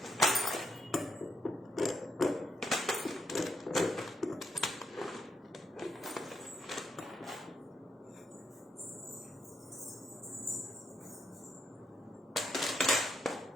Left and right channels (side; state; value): both; normal; correlation 0.79